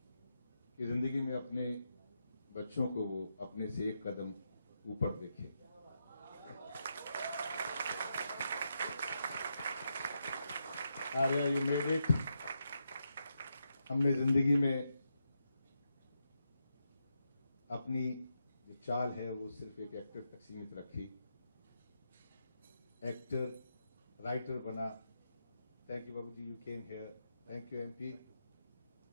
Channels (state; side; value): inverted; both; correlation -0.84